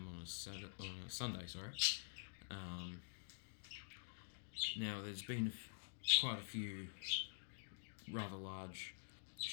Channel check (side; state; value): right; silent; digital silence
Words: on a Sunday. Now there's been quite a few rather large